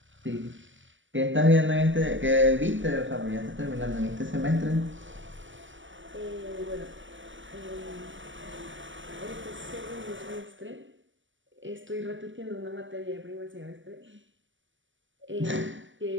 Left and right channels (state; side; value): late; left; 0.55 ms